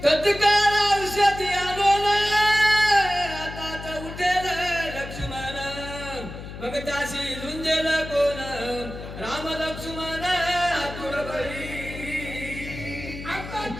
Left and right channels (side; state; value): left; noise; hum, 11 dB below the sound